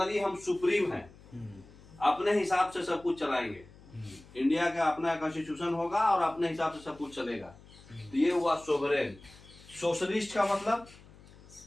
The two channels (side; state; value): left; noise; hum, 22 dB below the sound